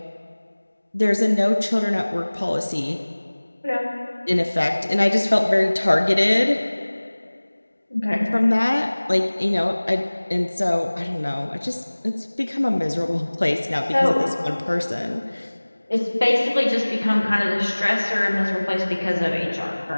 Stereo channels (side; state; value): both; inverted; correlation -1.00